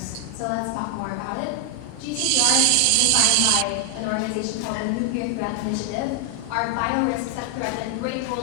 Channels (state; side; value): different; both; correlation 0.00